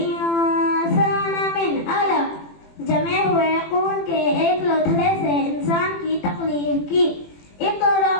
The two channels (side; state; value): right; late; 21 ms